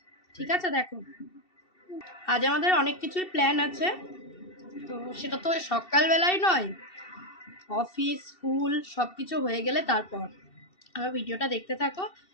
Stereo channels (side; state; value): right; late; 2.7 ms